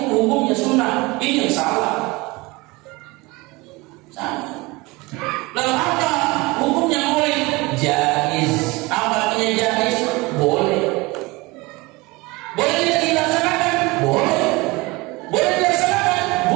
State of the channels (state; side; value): quieter; left; 23.5 dB